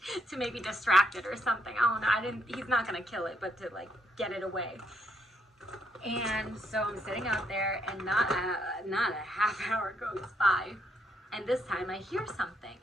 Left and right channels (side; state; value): both; normal; correlation 0.74